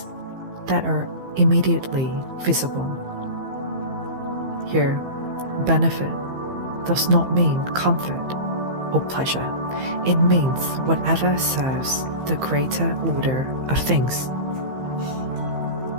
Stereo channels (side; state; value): left; late; 15 ms